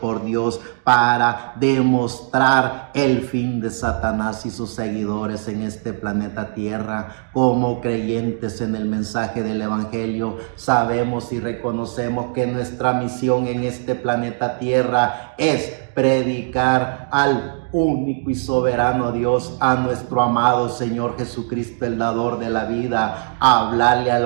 Dios para demostrar el fin de Satanás y sus seguidores en este planeta Tierra. Como creyentes en el mensaje del Evangelio, sabemos y reconocemos que nuestra misión en este planeta Tierra es predicar al único y soberano Dios, a nuestro amado Señor Jesucristo, el dador de la vida, hablarle a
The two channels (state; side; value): silent; left; digital silence